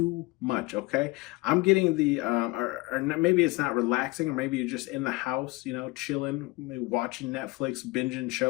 much, okay? I'm getting the or maybe it's not relaxing, or maybe you're just in the house, chilling, watching Netflix, binging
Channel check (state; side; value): quieter; right; 22.3 dB